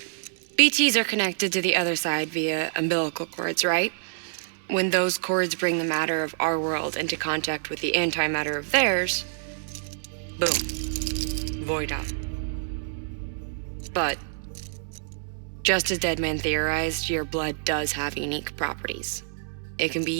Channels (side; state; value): left; silent; 60 dB below the other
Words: BTs are connected to the other side via umbilical cords, right? When those cords bring the matter of our world into contact with the antimatter of theirs, boom, void out. But, just as Deadman theorized, your blood does have unique properties. It can be